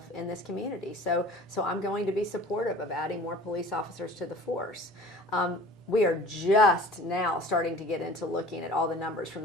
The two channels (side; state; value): both; normal; correlation 0.44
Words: in this community. So I'm going to be supportive of adding more police officers to the force. We are just now starting to get into looking at all the numbers from